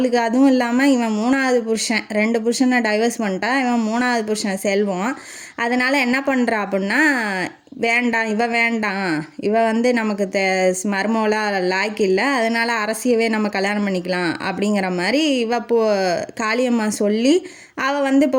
அதுவும் இல்லாமல் இவன் 3வது புருஷன், 2 புருஷனை டைவர்ஸ் பண்ணிட்டா. இவன் 3வது புருஷன் செல்வம். அதனால் என்ன பண்ணுறா அப்படின்னா, வேண்டாம் இவ வந்து நமக்கு மருமவளாக லாய்க்கு இல்லை, அதனால் அரசியவே நம்ம கல்யாணம் பண்ணிக்கலாம் அப்படிங்கிற மாதிரி காளியம்மா சொல்லி அவள் வந்து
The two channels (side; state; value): both; identical; correlation 1.00